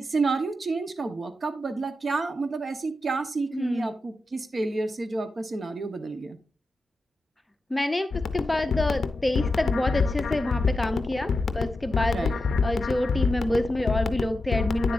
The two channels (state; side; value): normal; both; correlation 0.89